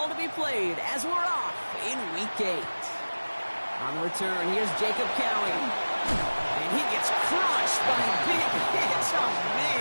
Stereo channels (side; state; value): both; inverted; correlation -1.00